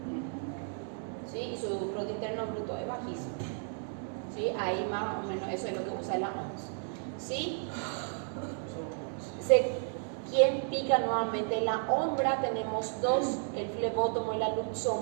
¿Sí? Y su Producto Interno Bruto es bajísimo. ¿Sí? Ahí más o menos eso es lo que usa la OMS. ¿sí? ¿Quién pica nuevamente? La ombra tenemos dos, el flebótomo y la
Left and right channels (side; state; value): left; silent; 56 dB below the other